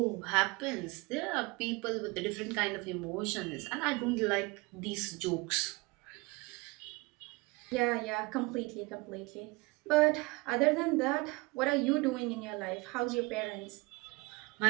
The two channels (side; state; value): left; quieter; 25.6 dB